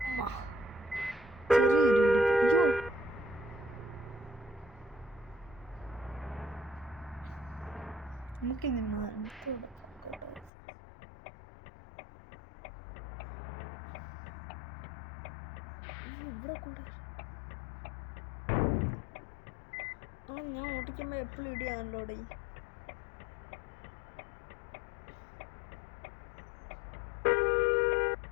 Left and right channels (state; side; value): drops out; right; at 10.5 s